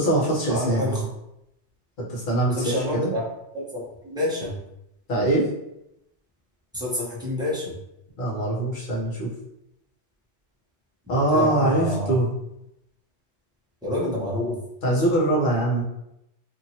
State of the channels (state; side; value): normal; both; correlation 0.10